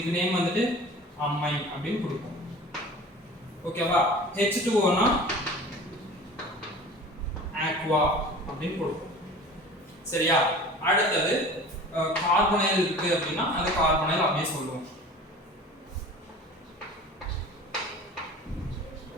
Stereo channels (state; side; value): normal; both; correlation 0.40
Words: நேம் வந்துட்டு அமைன் அப்படின்னு கொடுப்போம். ஓகேவா, H2O னா aqua அப்படின்னு கொடுப்போம். சரியா, அடுத்தது கார்பனைல் இருக்கு அப்படின்னா அது கார்பனைல் அப்படியே சொல்லுவோம்.